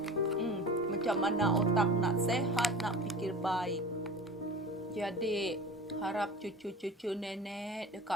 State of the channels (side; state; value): both; normal; correlation 0.36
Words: Macam mana otak nak sehat, nak fikir baik. Jadi, harap cucu-cucu nenek